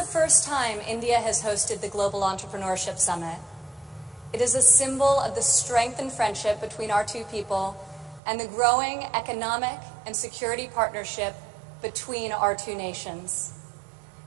first time India has hosted the Global Entrepreneurship Summit. It is a symbol of the strength and friendship between our two people and the growing economic and security partnership between our two nations.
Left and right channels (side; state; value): left; drops out; at 8.2 s